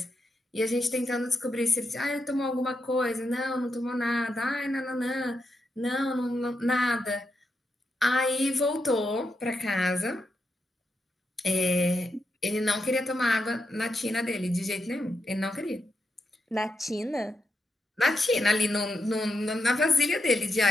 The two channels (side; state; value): both; normal; correlation 0.85